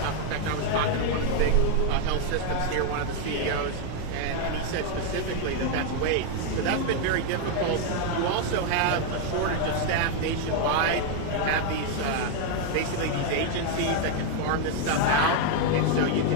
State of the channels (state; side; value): different; both; correlation 0.01